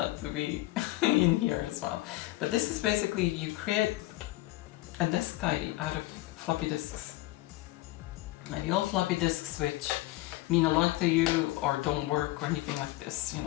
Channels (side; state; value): right; quieter; 18.4 dB